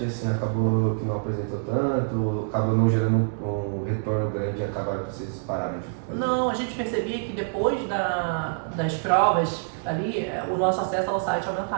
assim, acabou que não apresentou tanto, acabou não gerando um retorno grande e acabaram que vocês pararam de fazer? Não, a gente percebia que depois das provas ali, o nosso acesso ao site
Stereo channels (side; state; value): left; silent; digital silence